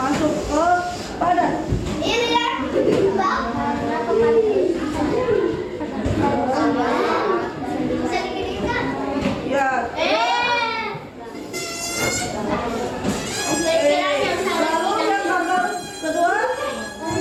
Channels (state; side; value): identical; both; correlation 1.00